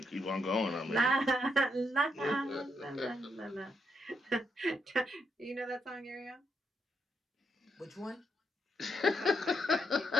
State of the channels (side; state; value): both; normal; correlation 0.79